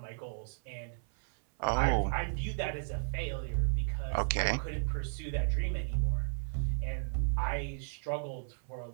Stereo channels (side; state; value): left; silent; 55 dB below the other